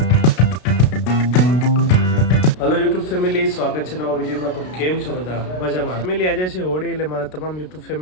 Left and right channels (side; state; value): right; late; 33 ms